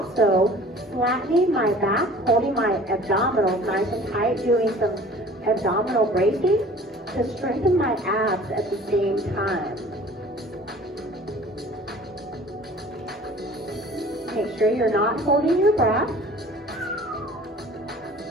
flattening my back, holding my abdominals nice and tight, doing some abdominal bracing to strengthen my abs at the same time. Make sure you're not holding your breath.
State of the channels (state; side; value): normal; both; correlation 0.47